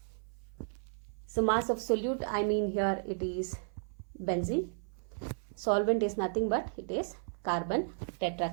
So mass of solute, I mean here it is benzene. Solvent is nothing but it is carbon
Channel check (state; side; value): silent; left; 55 dB below the other